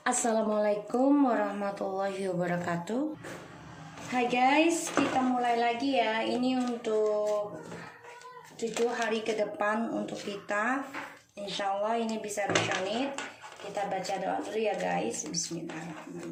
Assalamualaikum warahmatullahi wabarakatuh. Hai guys, kita mulai lagi ya. Ini untuk 7 hari ke depan untuk kita. Insya Allah ini bisa resonate. Kita baca doa dulu ya guys.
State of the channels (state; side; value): identical; both; correlation 1.00